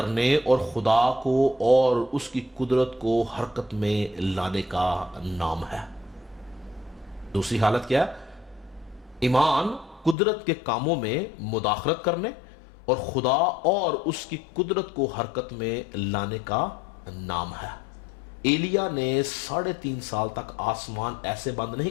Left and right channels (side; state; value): right; drops out; at 10.2 s